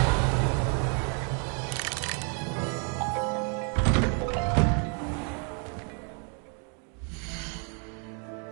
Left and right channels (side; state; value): left; quieter; 39.6 dB